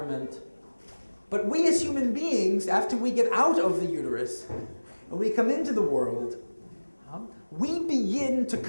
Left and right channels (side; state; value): both; inverted; correlation -1.00